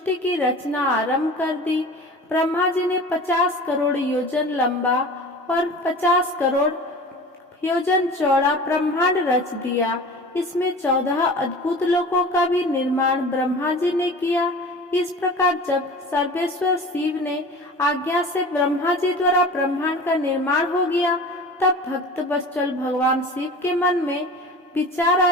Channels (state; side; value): normal; both; correlation 0.38